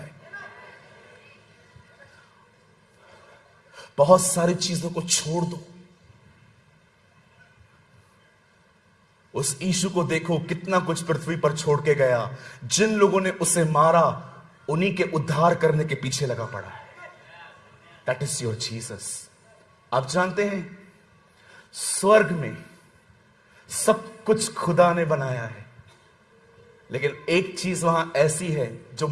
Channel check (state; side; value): identical; both; correlation 1.00